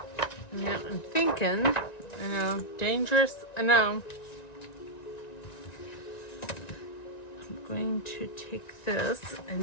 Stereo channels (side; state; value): right; late; 1.9 ms